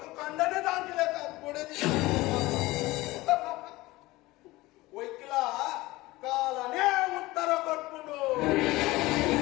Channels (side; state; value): right; quieter; 19.7 dB